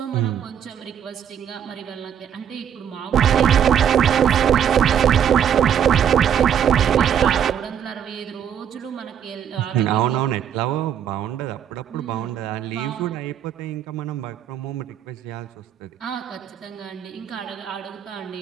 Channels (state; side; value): quieter; left; 8.9 dB